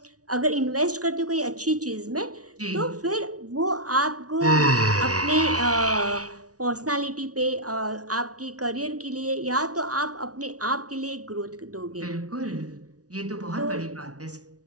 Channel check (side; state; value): left; late; 0.68 ms